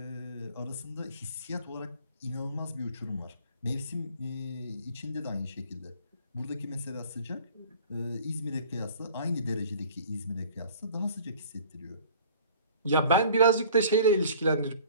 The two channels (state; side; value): inverted; both; correlation -0.49